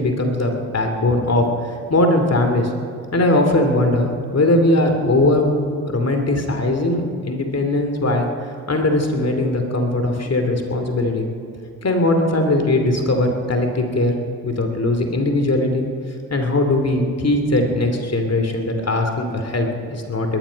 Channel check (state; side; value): normal; both; correlation 0.26